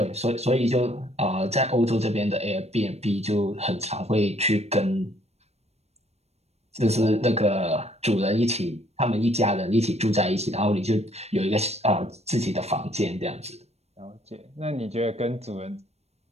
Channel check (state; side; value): late; left; 0.31 ms